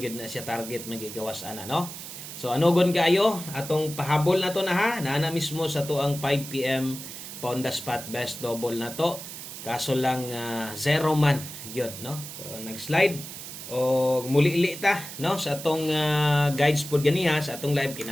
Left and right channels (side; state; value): right; noise; hiss, 11 dB below the sound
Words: gyud na siya target magigawas ana no. So anogon kaayo atong pahabol na to na ha na mismo sa tuang 5 PM pa on the spot best double na to kaso lang zero man gyud no. So nag-slide o muli-li ta no sa atong guides pod ganiha sa atong live